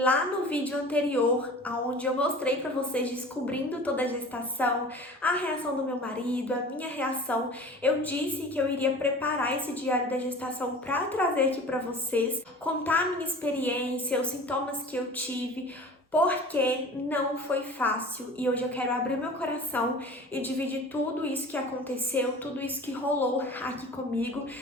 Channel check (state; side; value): normal; both; correlation 0.41